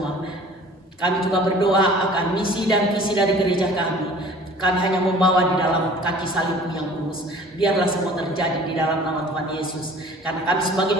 Kami juga berdoa akan misi dan visi dari gereja kami. Kami hanya membawa di dalam kaki salib-Mu yang kudus. Biarlah semua terjadi di dalam nama Tuhan Yesus. Karena kami sebagai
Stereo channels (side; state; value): both; normal; correlation 0.48